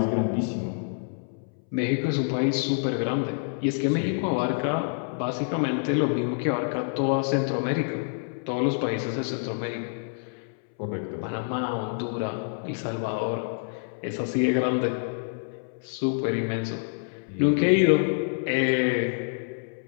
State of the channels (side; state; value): right; silent; 60 dB below the other